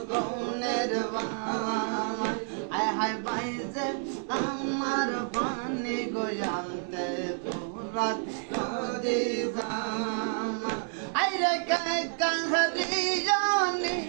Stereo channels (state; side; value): silent; left; 56 dB below the other